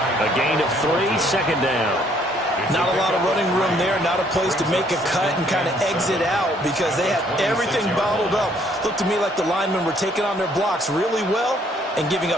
A gain of 3, 2nd down. Not a lot of running room there, not a place to make a cut and kind of exit out because they had everything bottled up. Looked to me like the linemen were taking on their blocks really well and giving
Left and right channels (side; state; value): both; normal; correlation 0.65